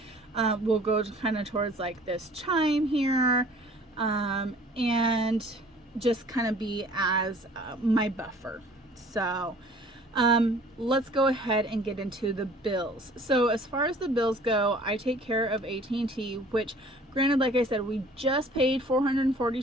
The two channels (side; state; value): both; normal; correlation 0.51